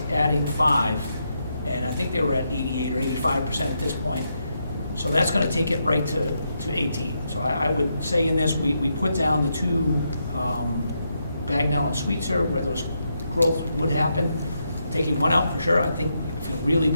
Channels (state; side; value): inverted; both; correlation -0.82